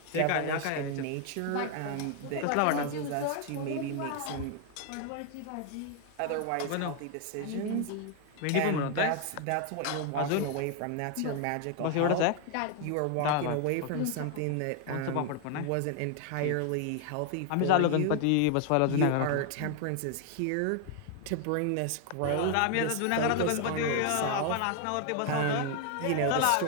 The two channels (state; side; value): different; both; correlation 0.00